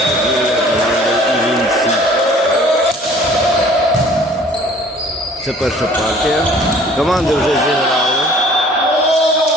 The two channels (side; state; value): both; normal; correlation 0.52